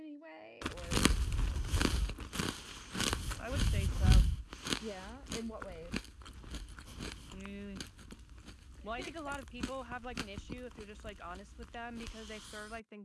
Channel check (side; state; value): both; identical; correlation 1.00